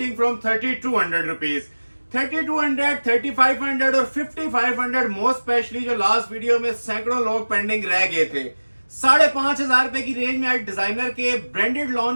फ्रॉम 3200 रुपीज 3200, 3500 और 5500 मोस्ट स्पेशली जो लास्ट वीडियो में सैकड़ों लोग पेंडिंग रह गए थे। 5500 रुपए की रेंज में आज डिजाइनर के ब्रांडेड लॉन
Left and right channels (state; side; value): inverted; both; correlation -1.00